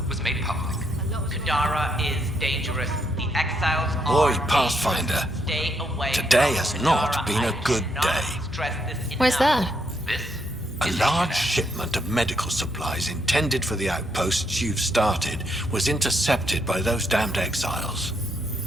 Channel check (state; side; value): normal; both; correlation 0.76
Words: was made public. Kadara is dangerous. The exiles Boy, are Pathfinder, dangerous. Stay away today from has not Kadara. been a I good cannot day. stress this Why's enough. that? This A is large HNS. shipment of medical supplies intended for the outposts you've started was intercepted by those damned exiles.